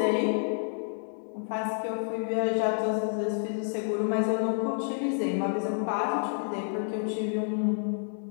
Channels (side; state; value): right; silent; digital silence